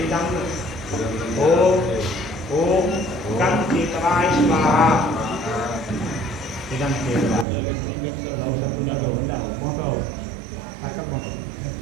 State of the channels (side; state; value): left; drops out; at 7.5 s